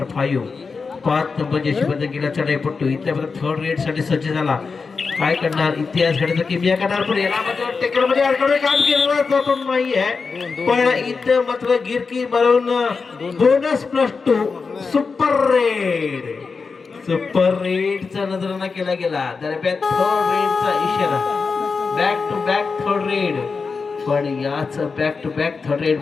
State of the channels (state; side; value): quieter; right; 4.8 dB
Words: 5 नंबर जर्सी बदल गेला चढाईपट्टू इथे मात्र थर्ड रेड साठी सज्ज झाला. काय करणार इतिहास घडत किमिया करणार पण याला मात्र टेकरमध्ये अडकवणे काम केलं नाही आहे पण इथं मात्र गिरकी मारून बोनस +2 सुपर रेडचा नजराना केला गेला. दरम्यान थर्ड रेडचा इशारा back to back third raid पण याच back to back third raid